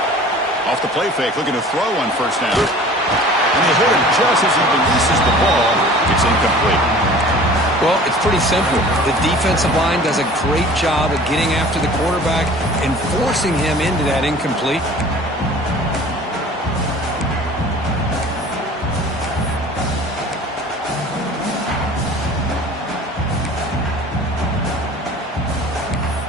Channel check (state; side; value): normal; both; correlation 0.45